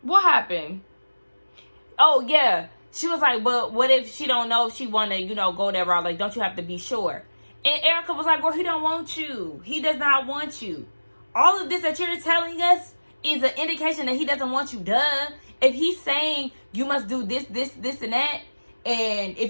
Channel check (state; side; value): inverted; both; correlation -1.00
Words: what happened? Oh, yeah. She was like, but what if she don't know if she want to, go that route? Like, don't you have to be sure? And Erica was like, girl, he don't want you. He does not want you. All of this that you're telling us is an indication that he doesn't want you. Duh. If he's saying you must do this, and that, and